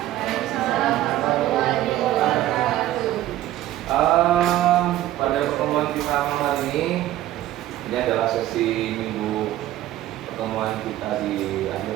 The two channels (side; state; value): left; quieter; 14.0 dB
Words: Pada pertemuan kita malam hari ini adalah sesi minggu pertemuan kita di akhir